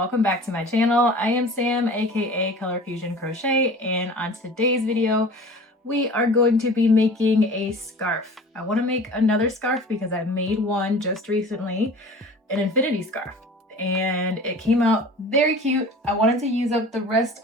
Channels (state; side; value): normal; both; correlation 0.41